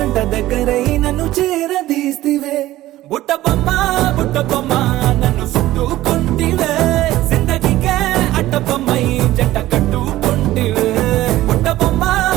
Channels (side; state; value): left; quieter; 15.6 dB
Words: దగ్గరై నన్ను చేరదీస్తివే బుట్ట బొమ్మ నన్ను చుట్టుకుంటివే జిందగీకే అట్ట బొమ్మై జంట కట్టుకుంటివే బుట్ట